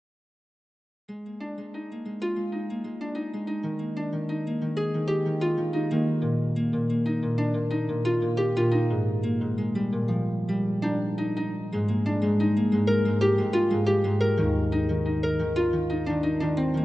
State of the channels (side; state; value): both; normal; correlation 0.95